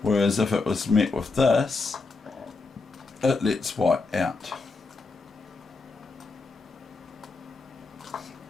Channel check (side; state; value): right; quieter; 3.9 dB